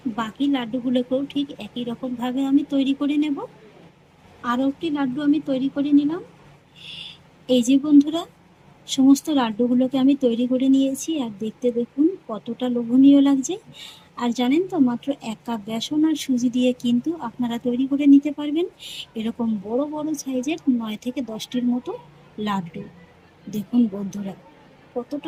বাকি লাড্ডুগুলোকেও ঠিক একই রকমভাবে আমি তৈরি করে নেব। আরও একটি লাড্ডু আমি তৈরি করে নিলাম। এই যে বন্ধুরা, সমস্ত লাড্ডুগুলোকে আমি তৈরি করে নিয়েছি, আর দেখতে দেখুন কতটা লোভনীয় লাগছে। আর জানেন তো, মাত্র 1 কাপ বেসন আর সুজি দিয়ে কিন্তু আপনারা তৈরি করে নিতে পারবেন এরকম বড় বড় সাইজের 9 থেকে 10টির মতো লাড্ডু। দেখুন বন্ধুরা,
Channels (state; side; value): identical; both; correlation 1.00